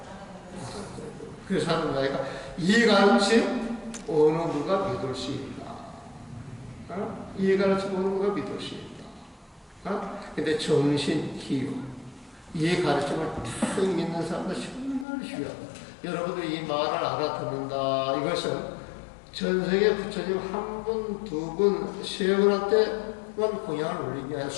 그래서 하는 이야기가 이 가르침 어느 누가 믿을 수 있나? 이 가르침 어느 누가 믿을 수 있나? 근데 정신, 기유 이 가르침을 탁 믿는 사람들 정말 쉬워요. 여러분들이 이 말을 알아듣는다 이것은 전생에 부처님 한 분, 두 분, 세 분한테만 공양을 올린 게 아니라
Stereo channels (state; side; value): drops out; right; at 15.1 s